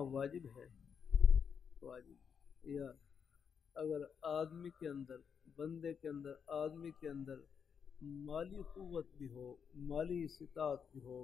واجب ہے، واجب یا اگر آدمی کے اندر، بندے کے اندر، آدمی کے اندر مالی قوت بھی ہو، مالی استطاعت بھی ہو،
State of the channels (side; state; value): right; quieter; 6.9 dB